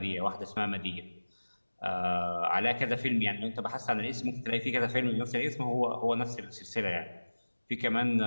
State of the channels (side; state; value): both; inverted; correlation -1.00